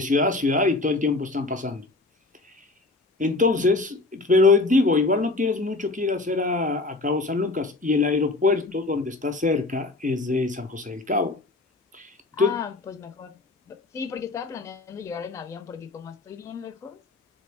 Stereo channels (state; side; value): quieter; right; 3.2 dB